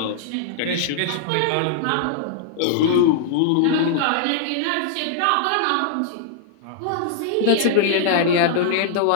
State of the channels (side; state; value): both; different; correlation -0.01